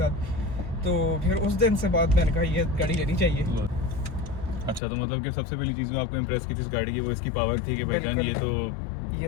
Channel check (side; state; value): right; drops out; at 4.8 s